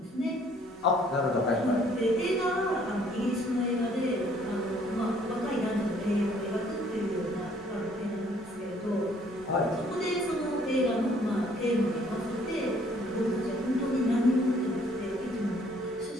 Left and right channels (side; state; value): both; normal; correlation 0.61